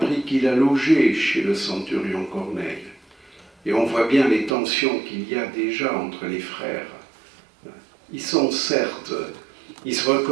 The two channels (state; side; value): drops out; left; at 4.5 s